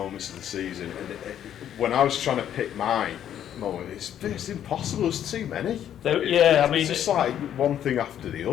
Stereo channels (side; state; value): right; quieter; 10.3 dB